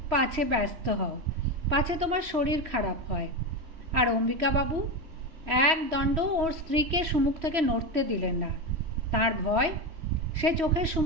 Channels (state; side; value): late; left; 3.1 ms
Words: পাছে ব্যস্ত হও, পাছে তোমার শরীর খারাপ হয়। আর অম্বিকাবাবু এক দণ্ড ওর স্ত্রীকে সম্মুখ থেকে নড়তে দিলেন না। তার ভয় সে চোখের